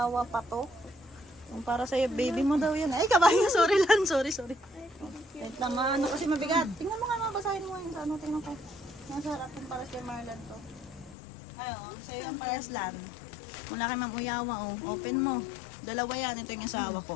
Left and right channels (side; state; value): right; drops out; at 11.2 s